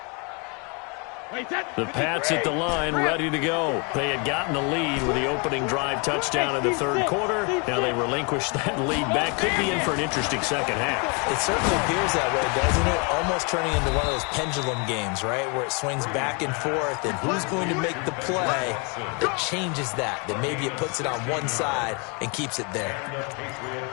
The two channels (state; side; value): quieter; right; 33.3 dB